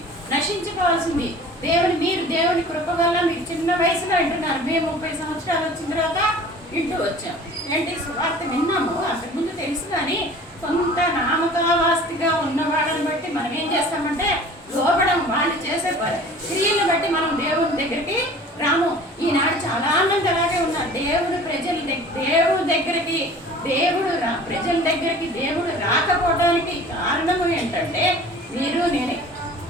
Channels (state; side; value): normal; both; correlation 0.45